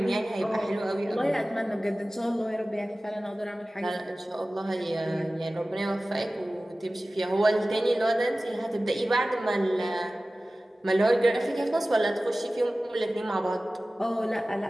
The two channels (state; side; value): normal; both; correlation 0.97